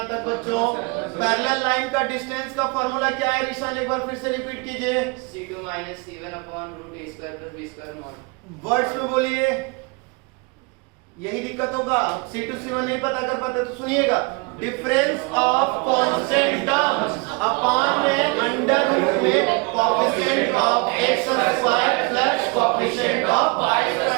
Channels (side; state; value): left; quieter; 29.3 dB